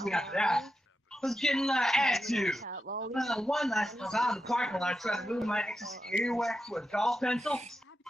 me after that. I was getting attitude. One night I was out in the parking lot trying to move my excess earwax with a golf pencil.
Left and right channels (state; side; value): normal; both; correlation 0.88